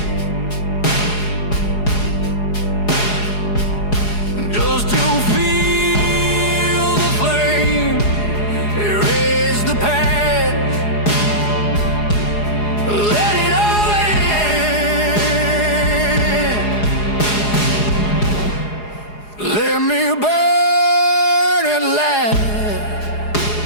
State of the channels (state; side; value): late; right; 4.8 ms